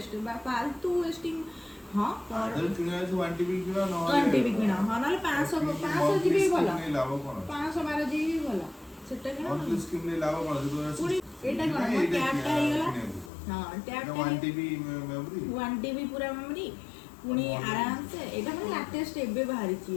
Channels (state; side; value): drops out; right; at 13.3 s